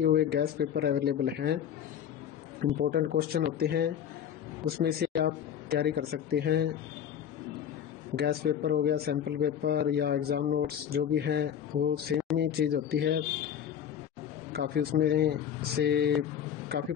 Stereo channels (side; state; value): right; quieter; 9.1 dB